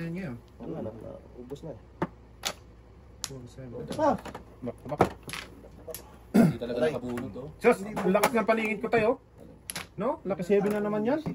yan ngayon. Wala na. Ubus na eh. 4-7. Ah! Tabak. Hindi talaga nakabunot to. Sus! Ang lakas ng palingit ko tayo. No? Lakas 7 na naman yan.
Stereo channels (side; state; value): both; identical; correlation 1.00